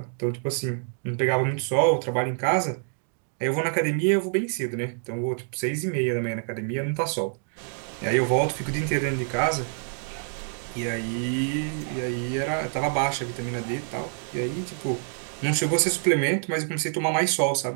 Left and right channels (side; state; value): left; silent; 60 dB below the other